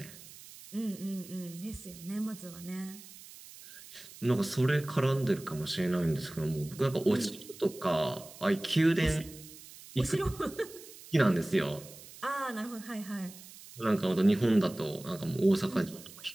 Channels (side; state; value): right; noise; hiss, 18 dB below the sound